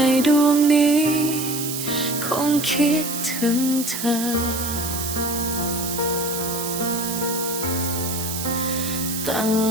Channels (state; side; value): noise; right; hiss, 5 dB below the sound